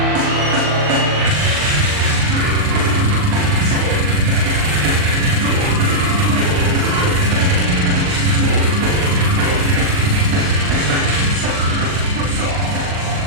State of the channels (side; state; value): left; late; 40 ms